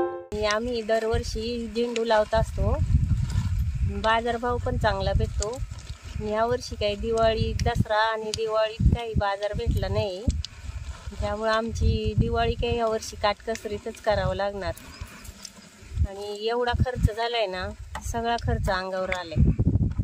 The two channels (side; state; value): both; identical; correlation 1.00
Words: आम्ही दरवर्षी झेंडू लावत असतो, बाजारभाव पण चांगला भेटतो। यावर्षी काही दिवाळी दसरा आणि दिवाळीत काही बाजार भेटला नाही, त्यामुळे आमची दिवाळी काही यावर्षी काटकसरीतच करावं लागणार। आणि एवढा खर्च झालाय ना, सगळा खर्च अंगावर आलाय।